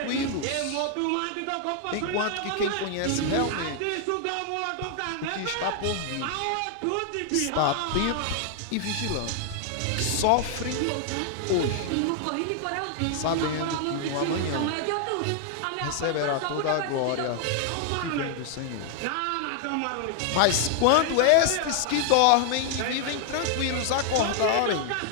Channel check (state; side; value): different; both; correlation 0.00